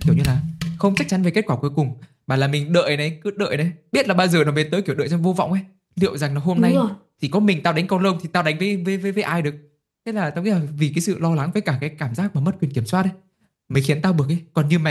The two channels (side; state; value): both; identical; correlation 1.00